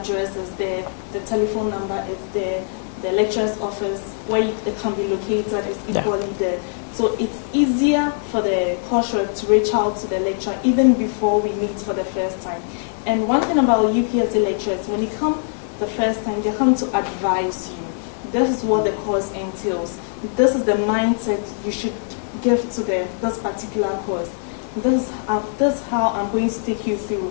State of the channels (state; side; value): silent; right; 64 dB below the other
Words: is there, the telephone number is there, the lecturer's office where it can be located is equally there. So it's easier for the course rep to reach out to the lecturer even before we meet for the first time. And one thing about UPSA lecturers, when you come the first time, they come to advise you. This is what the course entails. This is the mindset you should give to this particular course. This is how I'm going to take you through.